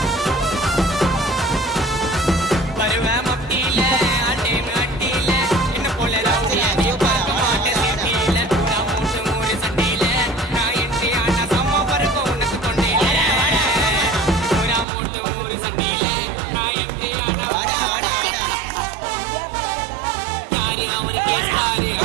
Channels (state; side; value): drops out; left; at 14.9 s